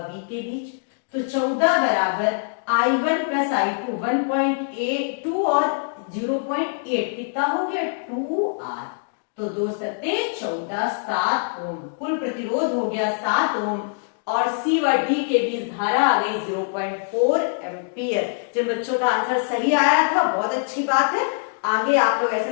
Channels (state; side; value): silent; right; digital silence